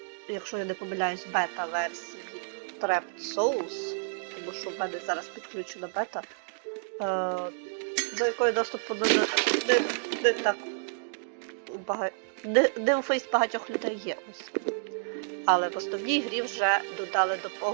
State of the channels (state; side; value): silent; left; digital silence